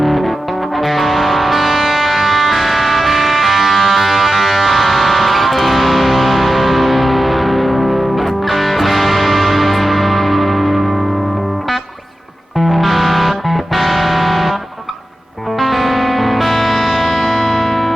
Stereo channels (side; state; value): both; normal; correlation 0.93